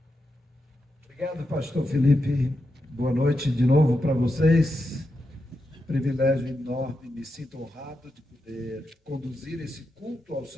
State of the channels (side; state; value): both; normal; correlation 0.87